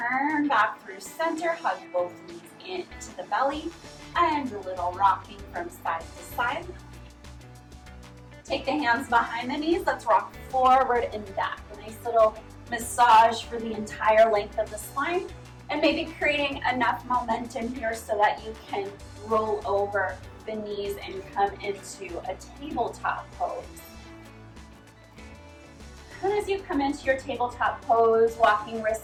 back through center, hug both knees into the belly, and a little rocking from side to side. Take the hands behind the knees. Let's rock forward and back. A nice little massage for the entire length of the spine. And maybe creating enough momentum here so that you can roll over the knees and come into a tabletop pose. And as you come into your tabletop pose, walking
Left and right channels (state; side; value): identical; both; correlation 1.00